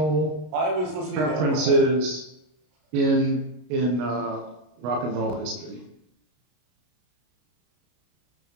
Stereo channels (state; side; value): late; left; 33 ms